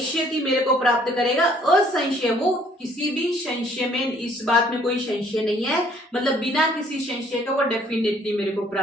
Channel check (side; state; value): both; normal; correlation 0.61